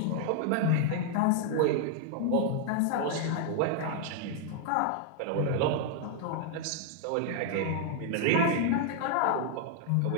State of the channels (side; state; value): both; different; correlation 0.00